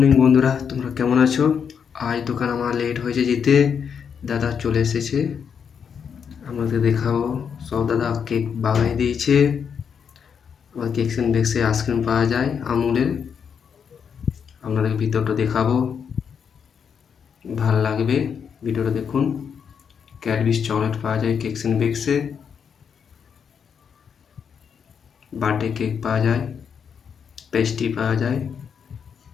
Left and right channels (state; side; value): quieter; right; 7.1 dB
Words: বন্ধুরা, তোমরা কেমন আছো? আজ দোকান আমার লেট হয়েছে যেতে, দাদা চলে এসেছে। আমাদের দেখাবো সব দাদা কেক বানিয়ে দিয়েছে। আবার কেকস এন্ড বেকসে আইসক্রিম পাওয়া যায় আমুলের। আপনাদের ভিতরটা দেখাবো, ভাল লাগবে, ভিডিওটা দেখুন। ক্যাডবেরিজ চকলেট পাওয়া যায় কেকস এন্ড বেকসে। বার্থডে কেক পাওয়া যায়, পেস্ট্রি পাওয়া যায়,